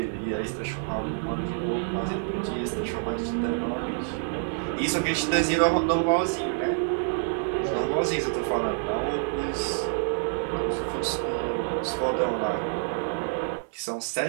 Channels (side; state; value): left; silent; 57 dB below the other